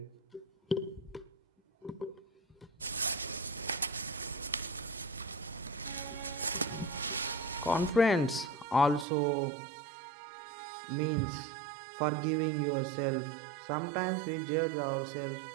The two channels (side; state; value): left; drops out; at 9.1 s